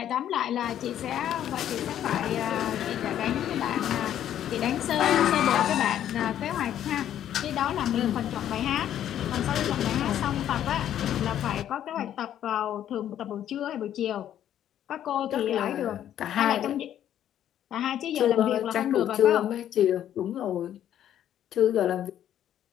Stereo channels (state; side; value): quieter; right; 10.9 dB